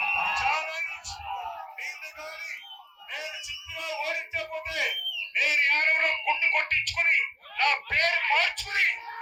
నేను చిత్తుగా ఓడించకపోతే నేను యాదవ్లో గుండు కొట్టించుకుని నా పేరు మార్చుకుని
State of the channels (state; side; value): identical; both; correlation 1.00